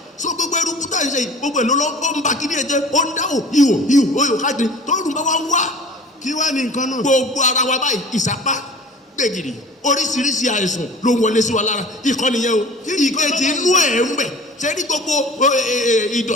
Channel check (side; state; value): both; normal; correlation 0.42